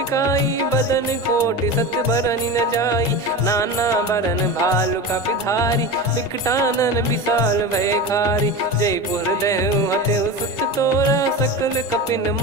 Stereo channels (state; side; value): normal; both; correlation 0.26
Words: बदन कोटि सत बरनि न जाई। नाना बरन भालु कपिधारी विकटानन विशाल भयखारी। जयपुर देहु हतेउ सुत तोरा सकल कपिन